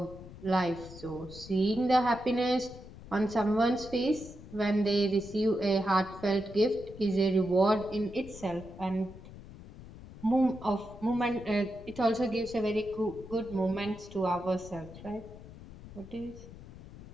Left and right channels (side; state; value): left; noise; rumble, 16 dB below the sound